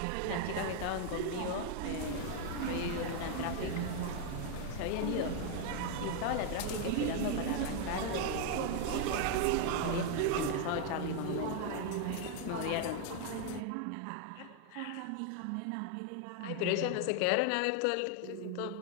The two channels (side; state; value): both; different; correlation 0.00